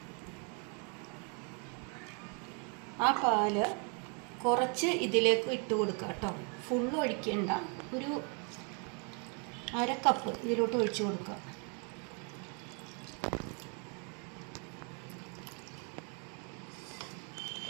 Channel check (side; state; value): left; quieter; 37.7 dB